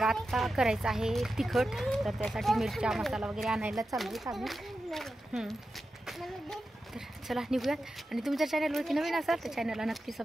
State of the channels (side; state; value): both; normal; correlation 0.91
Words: आत्ता करायचं आहे तिखट, तर त्यासाठी मिरच्या मसाला वगैरे आणायला चाललो आम्ही. तर चला निघूयात. आणि तुमच्या चॅनलवरती नवीन असाल तर चॅनलला नक्की